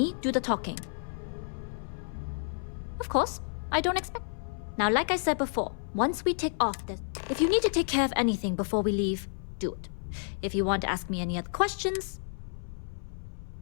do the talking. Of course, I don't expect. Now, like I said before, once we take off this, if you need to take care of anything before we leave, do it. If you want to ask me any other questions,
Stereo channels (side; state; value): right; silent; 57 dB below the other